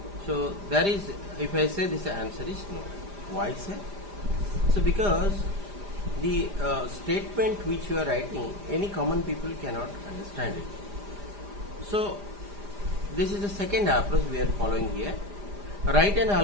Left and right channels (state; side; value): late; left; 5.0 ms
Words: So there is, if I say this answer is no. Why, sir? So because the statement which you are writing, any common people cannot understand it. So this is the second approach we are following here. Write an